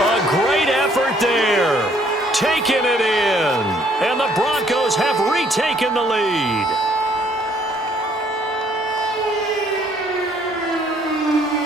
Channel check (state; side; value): normal; both; correlation 0.64